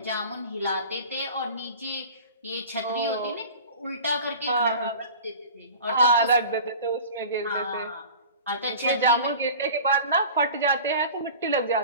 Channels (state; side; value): inverted; both; correlation -0.39